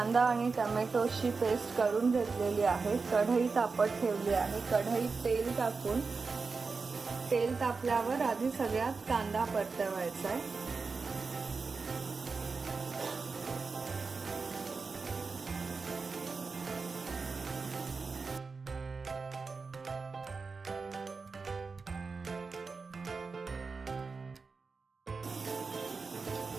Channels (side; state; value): left; quieter; 4.5 dB